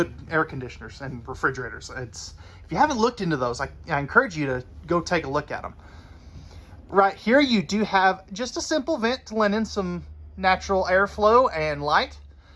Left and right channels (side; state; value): both; identical; correlation 1.00